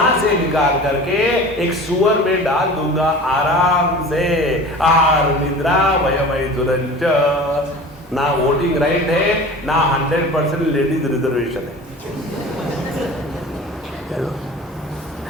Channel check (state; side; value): normal; both; correlation 0.38